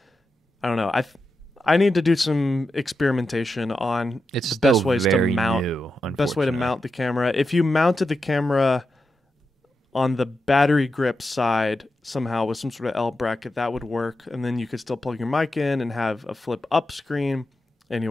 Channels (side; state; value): both; normal; correlation 0.88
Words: I don't know. I need to do some experimentation on the best ways to mount. Best way to mount the camera. If you mounted the camera on the battery grip side somehow with some sort of L bracket, that would work, and then you could still plug your mic in and have a flip up screen.